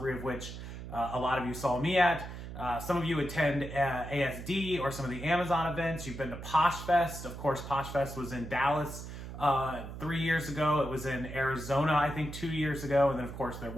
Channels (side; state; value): right; noise; hum, 10 dB below the sound